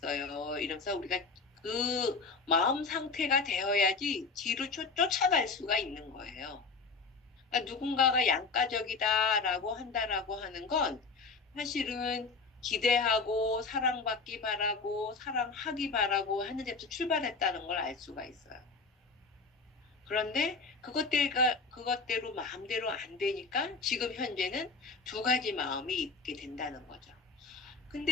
이러면서 우리가 그 마음 상태가 되어야지 뒤로 쫓아갈 수가 있는 거예요. 그러니까 누군가가 양가적이다라고 한다라고 하는 건 사실은 기대하고 사랑받기 바라고 사랑하기 바라고 하는 데서 출발했다는 걸 알 수가 있어요. 그런데 그것대로 마음대로 안 되니까 지금 현재는 두 가지 마음이 있게 된다는 거죠.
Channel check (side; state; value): right; quieter; 4.3 dB